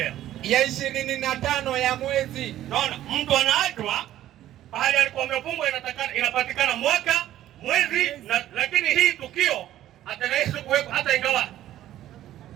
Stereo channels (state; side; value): quieter; left; 13.0 dB